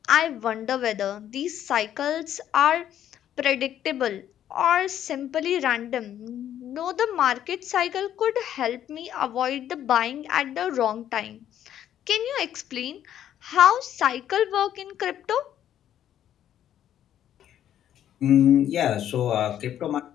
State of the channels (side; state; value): right; quieter; 10.8 dB